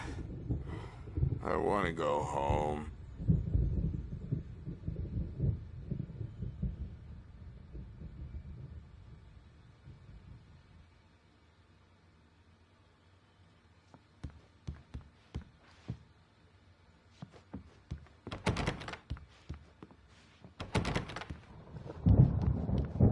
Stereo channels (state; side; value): identical; both; correlation 1.00